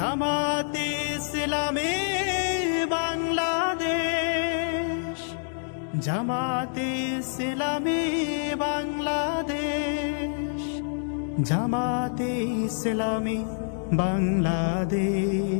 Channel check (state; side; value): silent; right; digital silence